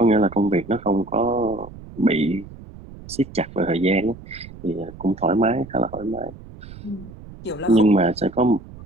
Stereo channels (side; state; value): right; noise; rumble, 17 dB below the sound